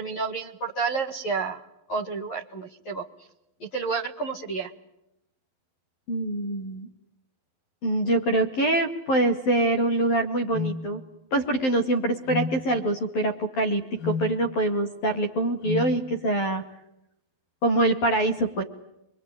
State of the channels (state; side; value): late; right; 11 ms